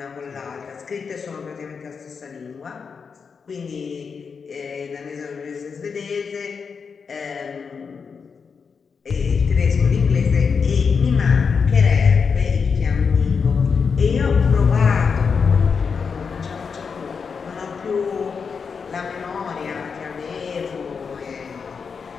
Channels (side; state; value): right; quieter; 5.7 dB